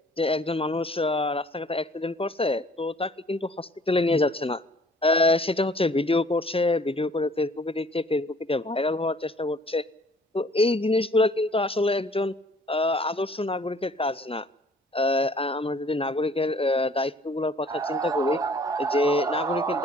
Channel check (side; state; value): both; normal; correlation 0.55